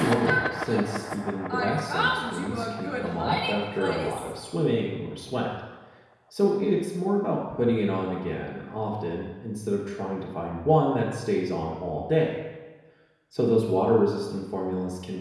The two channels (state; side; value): identical; both; correlation 1.00